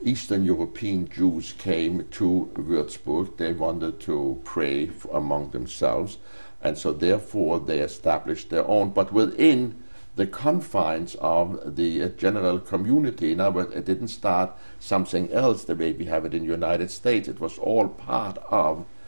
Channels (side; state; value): both; inverted; correlation -1.00